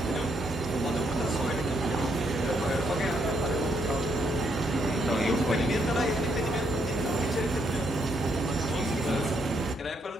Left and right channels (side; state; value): both; normal; correlation 0.75